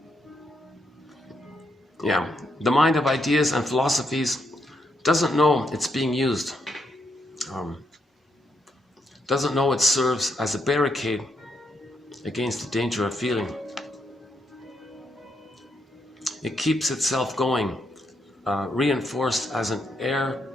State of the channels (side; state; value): both; normal; correlation 0.79